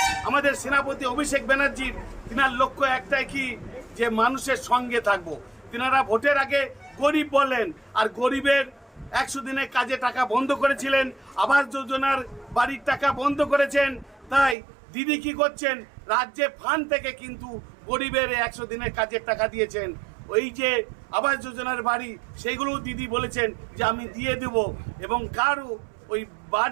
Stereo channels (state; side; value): drops out; left; at 14.6 s